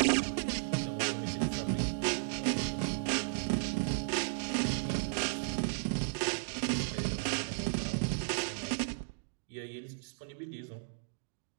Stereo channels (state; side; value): silent; left; digital silence